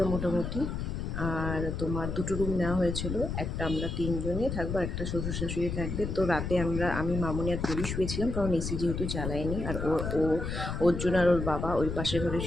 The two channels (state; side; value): noise; left; rumble, 4 dB below the sound